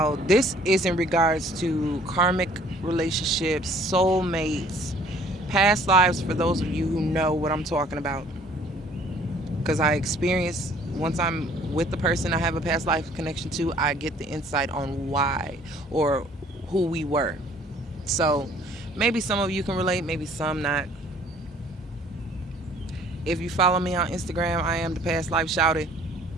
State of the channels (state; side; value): normal; both; correlation 0.56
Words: this is in regards to karmic relationships, soulmates, past lives, for those of you who know what I'm talking about. Because I experience, once I'm with the person I have a past life connection to, I get the insight on why or who we were. So maybe some of you can relate, maybe some not. If you follow me on Instagram, I am the past life shouted